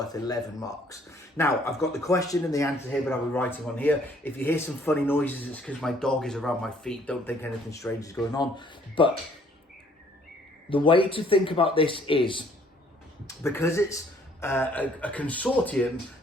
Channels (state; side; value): normal; both; correlation 0.61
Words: 11 marks. Now, I've got the question and the answer here, but I'll be writing on here. If you hear some funny noises, it's because my dog is around my feet. Don't think anything strange is going on. But the way to think about this is, because it's a consortium,